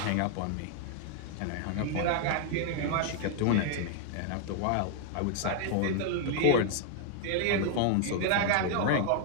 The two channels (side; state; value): both; different; correlation 0.00